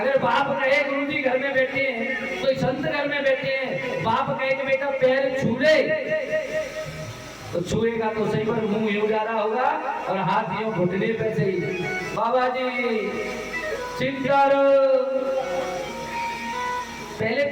बाप कहे गुरु जी घर में बैठे हैं, कोई संत घर में बैठे हैं, बाप कहे कि बेटा पैर छू ले, तो छुएगा तो सही पर मुंह यूं जा रहा होगा और हाथ यूं घुटने पे से ही बाबा जी चिंता पहले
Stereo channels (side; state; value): both; identical; correlation 1.00